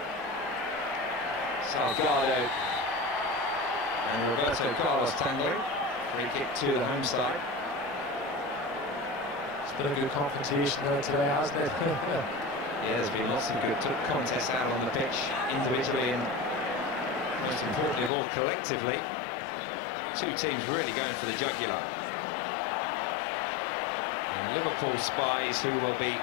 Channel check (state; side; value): drops out; right; at 18.1 s